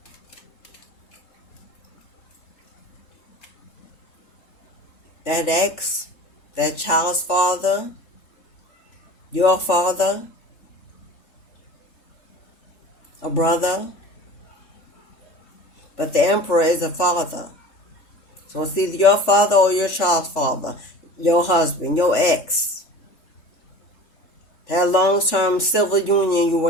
that ex, that child's father, your father, a brother, but the emperor is a father. So it's either your father or your child's father, your husband, your ex, that long-term civil union you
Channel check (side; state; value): right; late; 3.4 ms